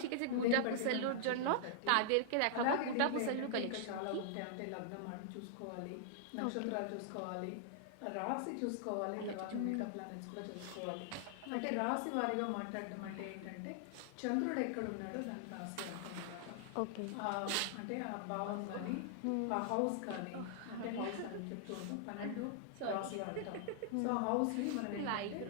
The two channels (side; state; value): both; different; correlation -0.01